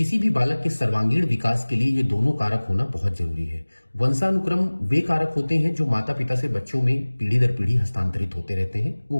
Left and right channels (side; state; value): both; inverted; correlation -1.00